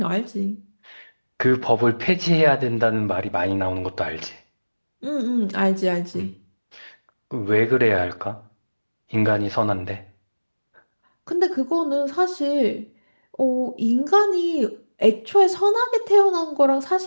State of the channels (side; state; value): both; inverted; correlation -1.00